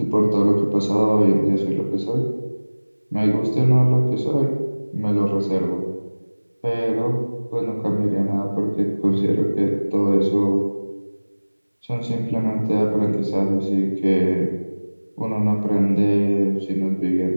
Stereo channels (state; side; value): inverted; both; correlation -1.00